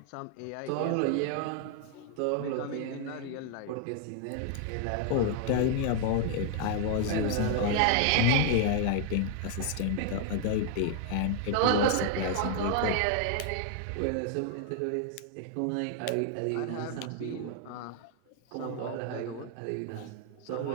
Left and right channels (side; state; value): both; different; correlation 0.00